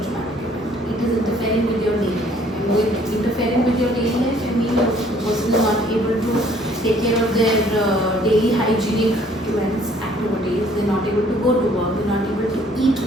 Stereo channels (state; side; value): normal; both; correlation 0.60